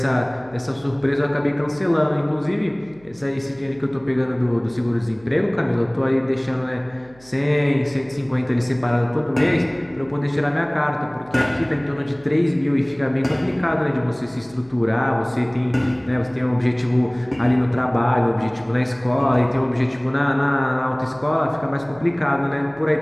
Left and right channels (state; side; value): noise; right; hum, 27 dB below the sound